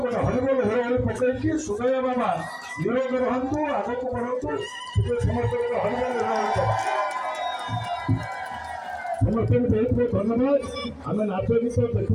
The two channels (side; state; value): both; identical; correlation 1.00